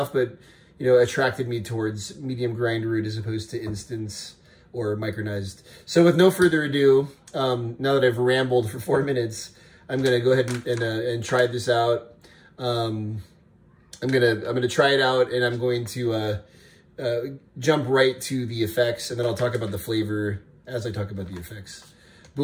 but attracted me towards medium grind root as opposed to instants or micronized. So with no further ado, now that I've rambled for 4 minutes, I'm gonna go ahead and try this out. I'm gonna try it out, and I'm going to jump right to the effects, and then I'll talk about the flavor as I talk about the effects.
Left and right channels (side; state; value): both; identical; correlation 1.00